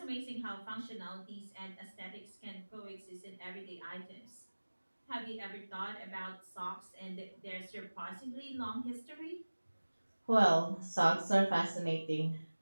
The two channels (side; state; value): both; inverted; correlation -1.00